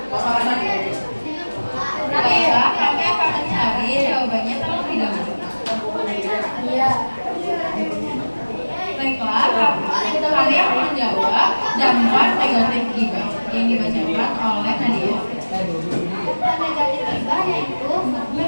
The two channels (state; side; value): inverted; both; correlation -1.00